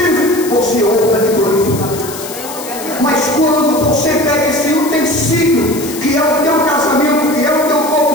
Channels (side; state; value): left; noise; hiss, 11 dB below the sound